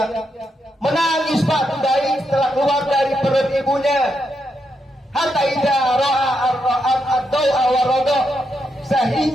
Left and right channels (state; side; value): normal; both; correlation 0.82